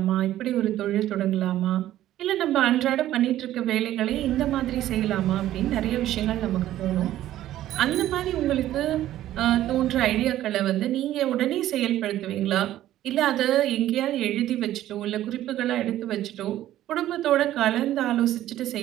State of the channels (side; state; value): left; quieter; 13.4 dB